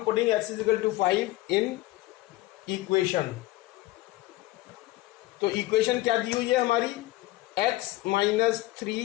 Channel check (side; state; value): right; quieter; 17.8 dB